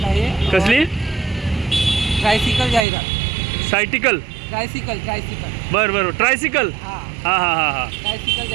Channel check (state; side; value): drops out; left; at 2.9 s